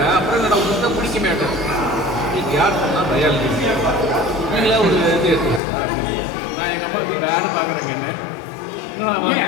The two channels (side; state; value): right; drops out; at 5.6 s